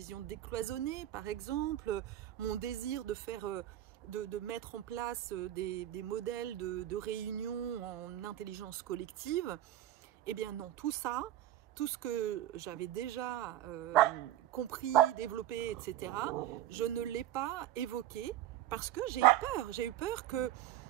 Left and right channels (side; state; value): left; quieter; 13.1 dB